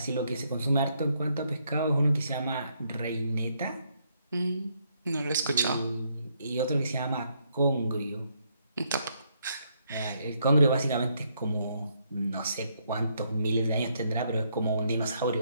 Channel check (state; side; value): inverted; both; correlation -0.74